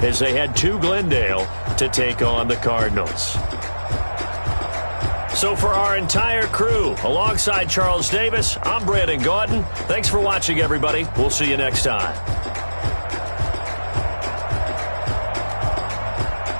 as they head to Glendale to take on the Cardinals. So for our entire crew, alongside Charles Davis, I'm Brandon Gaudin. Thanks for watching, everybody. We'll see you next time.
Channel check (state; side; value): inverted; both; correlation -1.00